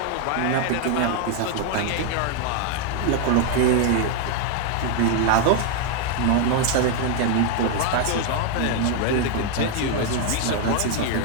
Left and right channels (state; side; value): different; both; correlation 0.00